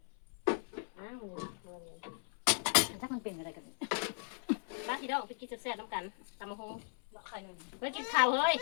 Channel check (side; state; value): right; silent; 53 dB below the other